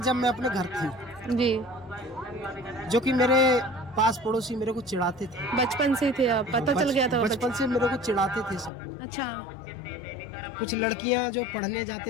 मैं अपने घर थी जी। जो कि मेरे पास पड़ोसी मेरे को चिढ़ाते थे। बचपन से थे आप? पता चल गया था? बचपन से मेरे को चिढ़ाते थे सब। अच्छा। कुछ लड़कियां जो पढ़ने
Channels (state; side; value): drops out; right; at 8.7 s